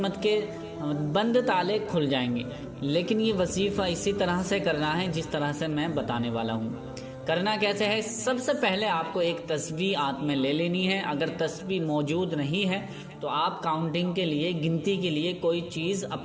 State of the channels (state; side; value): identical; both; correlation 1.00